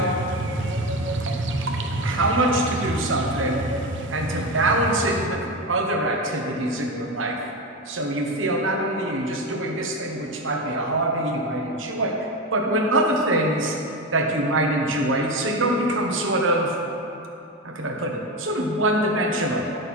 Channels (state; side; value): normal; both; correlation 0.18